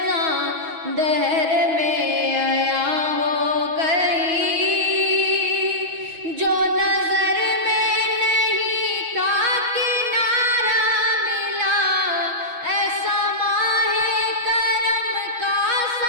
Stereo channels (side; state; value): left; late; 6.3 ms